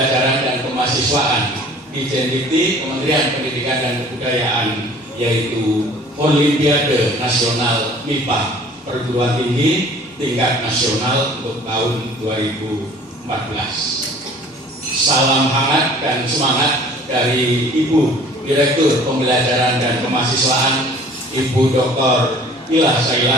dan Kemahasiswaan di Jendikti Kementerian Pendidikan dan Kebudayaan, yaitu Olimpiade Nasional MIPA Perguruan Tinggi tingkat nasional untuk tahun 2014. Salam hangat dan semangat dari Ibu Direktur Pembelajaran dan Kemahasiswaan, Ibu Dr. Ilah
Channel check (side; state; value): both; normal; correlation 0.50